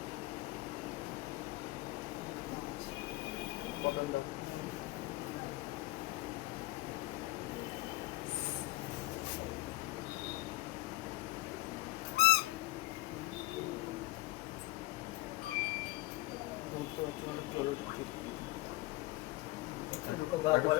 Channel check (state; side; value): quieter; right; 19.7 dB